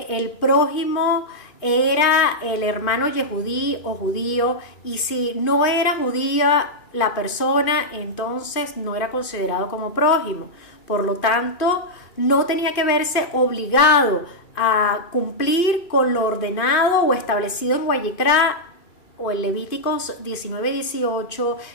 el prójimo era el hermano yehudí o judío, y si no era judía la persona, entonces no era considerado como prójimo. Por lo tanto, no tenía que verse obligado a cumplir con lo ordenado o establecido en Vayikra o en Levíticos 19:18,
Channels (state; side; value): late; right; 2.5 ms